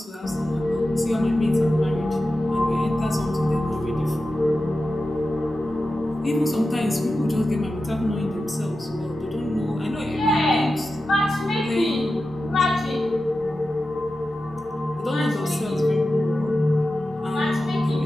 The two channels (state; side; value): normal; both; correlation 0.92